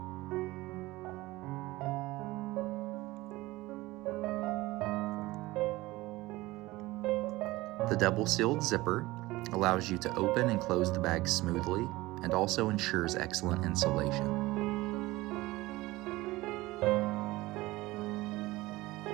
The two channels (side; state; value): left; quieter; 19.3 dB